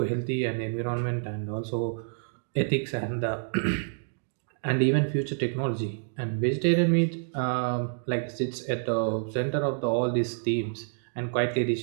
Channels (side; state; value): left; silent; digital silence